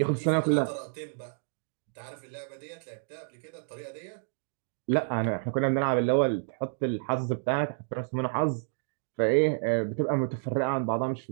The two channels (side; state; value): left; silent; digital silence